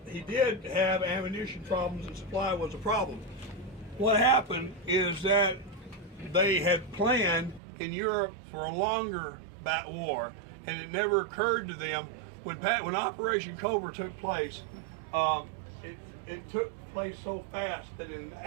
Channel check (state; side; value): drops out; left; at 7.6 s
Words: He did have ammunition problems, and supply was a problem. What happened is that they had planned in Europe for a longer war, and it never occurred to them when Operation Cobra took place. It took place so fast that in